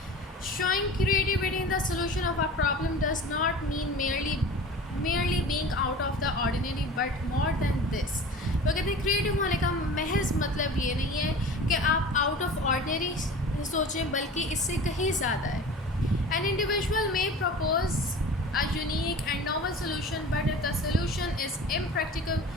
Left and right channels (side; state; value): both; normal; correlation 0.38